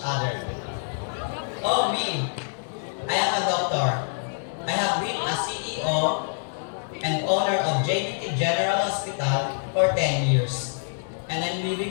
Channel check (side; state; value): right; silent; digital silence